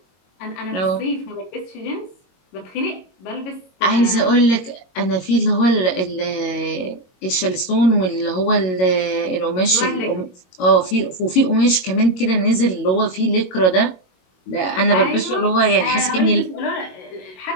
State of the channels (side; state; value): right; late; 22 ms